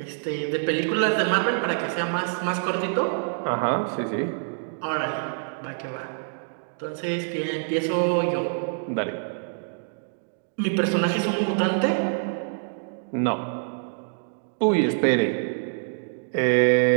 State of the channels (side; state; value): left; silent; digital silence